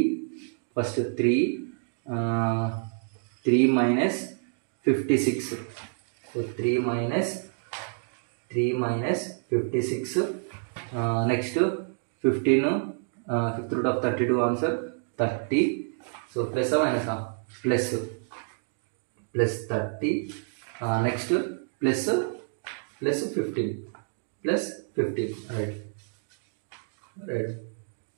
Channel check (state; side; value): silent; left; 59 dB below the other